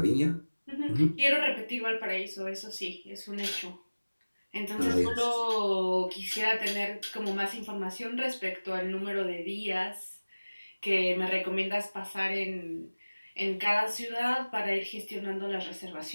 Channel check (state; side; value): inverted; both; correlation -1.00